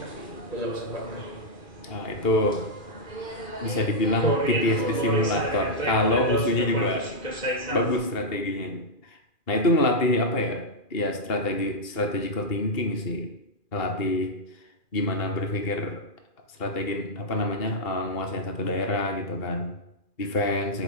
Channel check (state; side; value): late; right; 2.4 ms